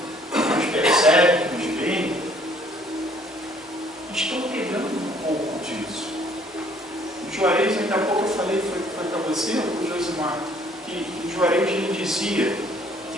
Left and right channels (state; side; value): normal; both; correlation 0.60